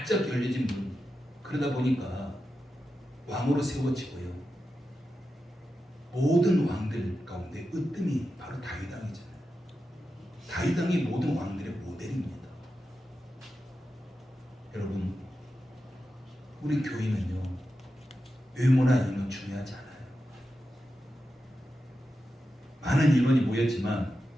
열려진 문. 그러다 보니까 왕으로 세워지고요. 모든 왕들 가운데 으뜸이 바로 다윗 왕이잖아요. 다윗 왕이 모든 왕들의 모델입니다. 여러분, 우리 교회는요, 외모나 인원 중요하지 않아요. 많은 인원이 모였지만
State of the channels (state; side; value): normal; both; correlation 0.90